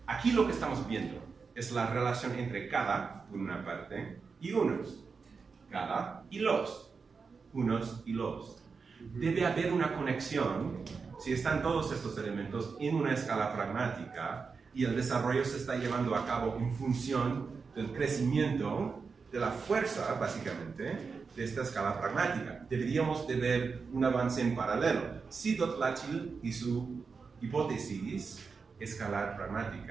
Aquí lo que estamos viendo es la relación entre cada, por una parte, y unos. Cada y los. Unos y los. Debe haber una conexión si están todos estos elementos en una escala pragmática y el desarrollo se está llevando a cabo en función del crecimiento de la fuerza, básicamente, de esta escala pragmática. Deberíamos de ver un avance en paralelo. Si Dotlatchil y su hipótesis escalar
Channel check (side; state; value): left; quieter; 5.0 dB